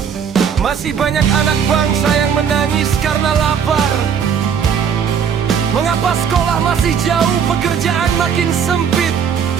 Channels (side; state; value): left; quieter; 7.5 dB